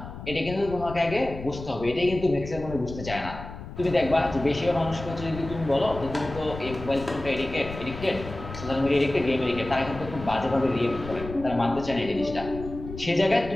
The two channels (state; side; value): noise; left; rumble, 11 dB below the sound